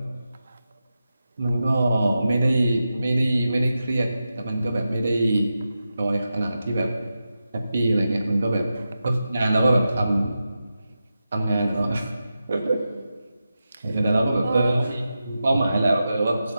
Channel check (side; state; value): both; inverted; correlation -0.91